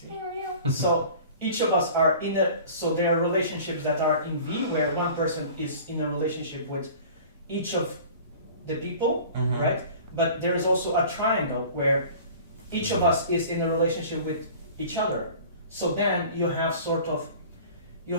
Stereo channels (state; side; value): inverted; both; correlation -0.43